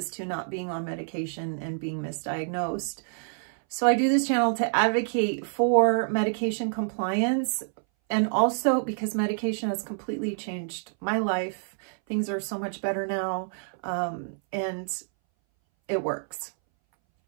to not being on medication and being misdiagnosed. So I do this channel to advocate for medication compliance, and also because medication has completely changed my life. Things are so much better now, and it works.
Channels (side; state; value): left; silent; 60 dB below the other